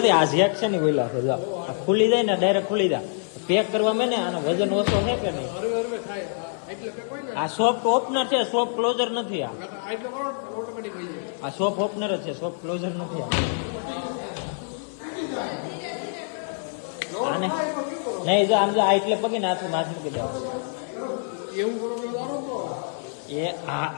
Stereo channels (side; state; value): right; silent; digital silence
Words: આ ઝેક છે ને બોલા છે જો ખુલી જાય ને ડાયરેક્ટ ખુલી જાય પેક કરવા મેં ને આનો વજન ઓછો છે કે નહીં આ સોફ્ટ ઓપનર છે સોફ્ટ ક્લોઝર નથી આ સોફ્ટ ઓપનર જ છે સોફ્ટ ક્લોઝર નથી આને નહીં જો આમ જો આ એટલે પગે નાથ મૂકી દેવા એ